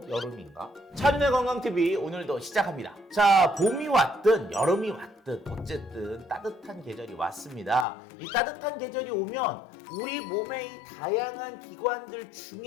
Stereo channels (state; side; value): drops out; right; at 7.9 s